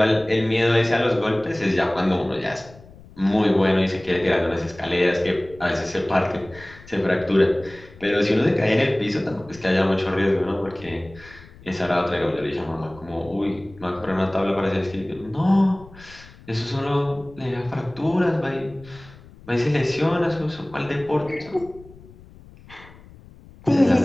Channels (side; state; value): left; noise; rumble, 21 dB below the sound